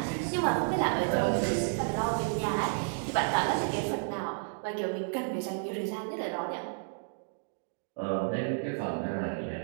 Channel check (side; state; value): left; silent; digital silence